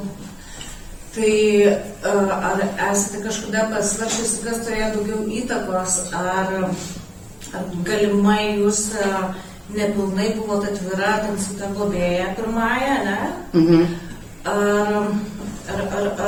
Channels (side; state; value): both; identical; correlation 1.00